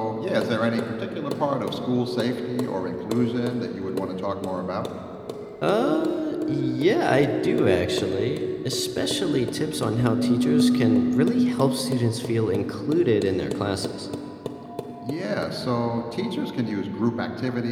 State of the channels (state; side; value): identical; both; correlation 1.00